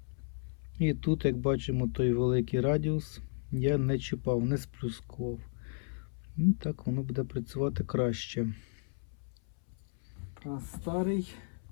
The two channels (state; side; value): silent; right; 55 dB below the other